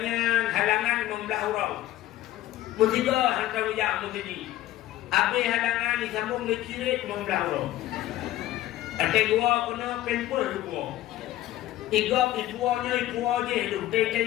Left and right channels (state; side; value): quieter; right; 14.6 dB